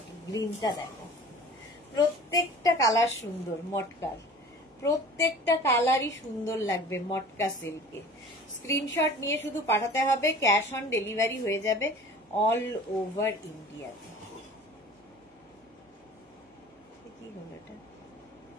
গ্রিনটা দেখো, প্রত্যেকটা কালার সুন্দর। মটকার প্রত্যেকটা কালারই সুন্দর লাগবে মটকা সিল্কে। স্ক্রিনশট নিয়ে শুধু পাঠাতে হবে, ক্যাশ অন ডেলিভারি হয়ে যাবে অল ওভার ইন্ডিয়াতে। কি হলো এটা?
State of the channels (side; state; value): both; normal; correlation 0.43